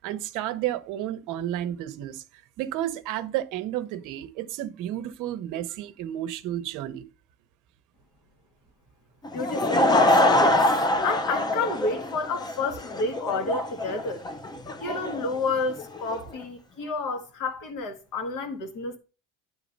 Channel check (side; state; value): both; normal; correlation 0.32